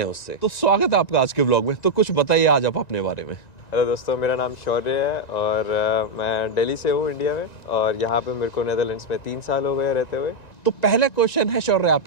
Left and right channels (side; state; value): right; late; 1.9 ms